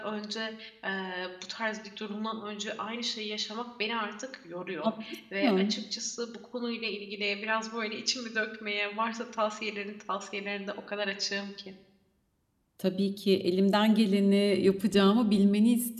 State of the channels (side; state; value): both; identical; correlation 1.00